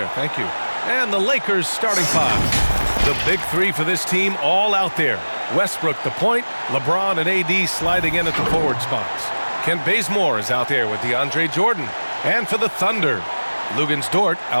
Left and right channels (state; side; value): inverted; both; correlation -1.00